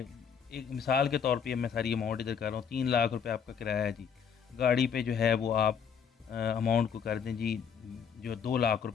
एक मिसाल के तौर पे मैं सारी अमाउंट इधर कर रहा हूँ, 3 लाख रुपए आपका किराया है जी। गाड़ी पे जो है वो आप अमाउंट को कर दें जी, जो 2 लाख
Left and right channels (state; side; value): quieter; right; 7.2 dB